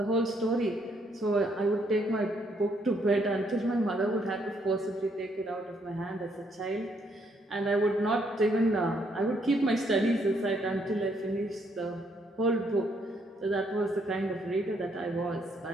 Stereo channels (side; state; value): both; normal; correlation 0.71